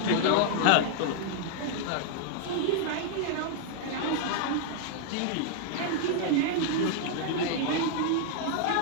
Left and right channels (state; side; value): different; both; correlation 0.00